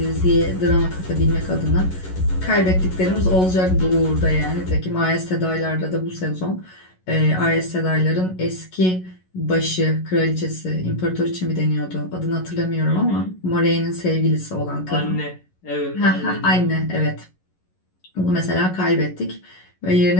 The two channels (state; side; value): late; right; 11 ms